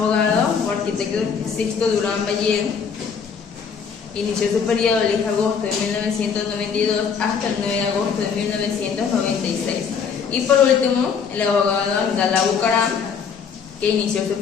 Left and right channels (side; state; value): right; quieter; 6.4 dB